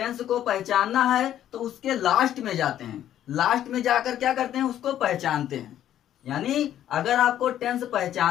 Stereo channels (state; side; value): quieter; right; 11.4 dB